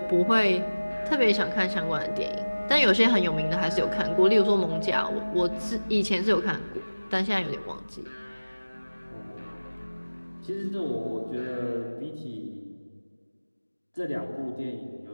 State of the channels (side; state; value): both; inverted; correlation -1.00